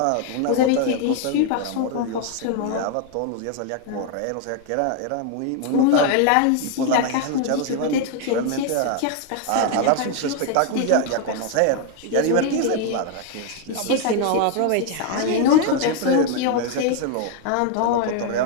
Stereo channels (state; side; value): different; both; correlation 0.00